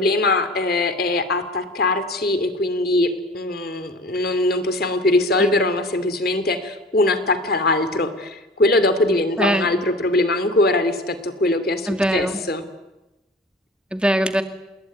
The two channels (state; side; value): normal; both; correlation 0.40